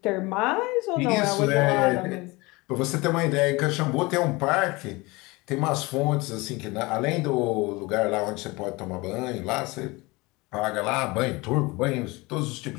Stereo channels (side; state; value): right; quieter; 23.5 dB